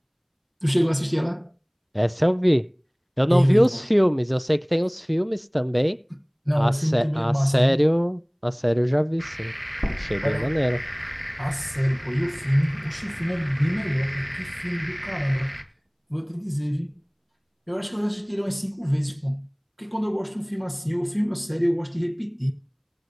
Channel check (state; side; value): identical; both; correlation 1.00